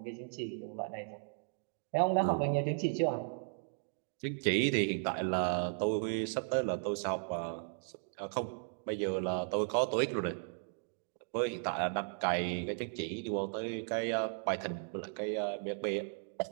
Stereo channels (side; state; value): left; silent; digital silence